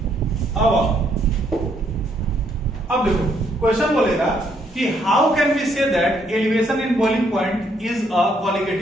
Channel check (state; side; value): normal; both; correlation 0.71